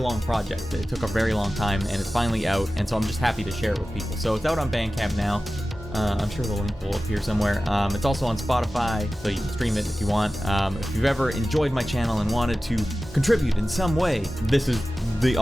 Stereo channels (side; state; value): both; normal; correlation 0.95